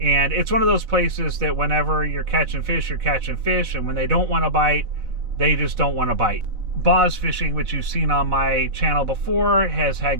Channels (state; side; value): late; left; 4.1 ms